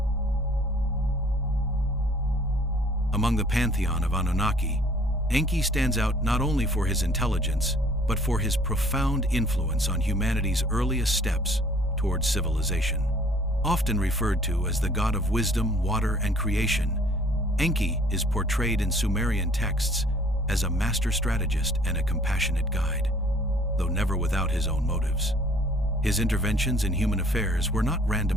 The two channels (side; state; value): both; normal; correlation 0.56